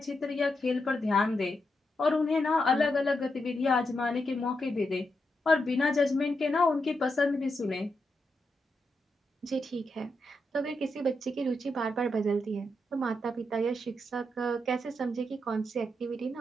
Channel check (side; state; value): both; normal; correlation 0.84